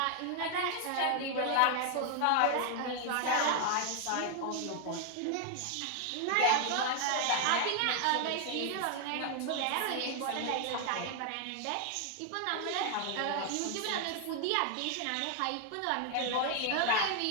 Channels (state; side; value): different; both; correlation 0.00